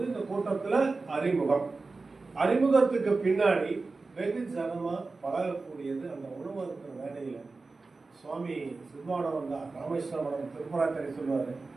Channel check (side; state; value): left; quieter; 3.8 dB